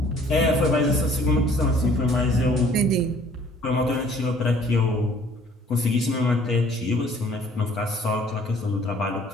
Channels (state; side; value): normal; both; correlation 0.56